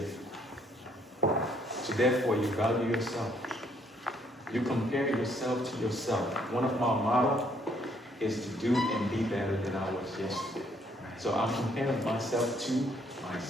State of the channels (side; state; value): both; normal; correlation 0.67